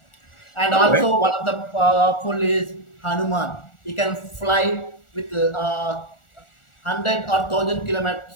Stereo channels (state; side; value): late; right; 1.4 ms